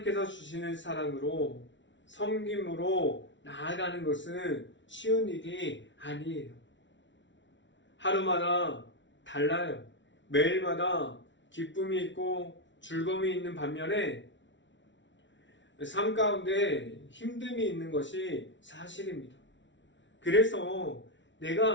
주시는 사랑으로 섬김으로 나아가는 것은 쉬운 일이 아니에요. 하루마다 달라요. 매일마다 기쁨이 있고 즐거움이 있는 반면에 삶 가운데 힘듦이 있는 것이 사실입니다. 그래서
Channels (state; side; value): late; right; 0.54 ms